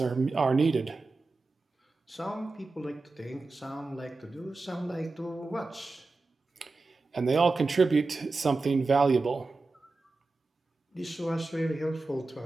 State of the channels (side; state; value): left; quieter; 3.6 dB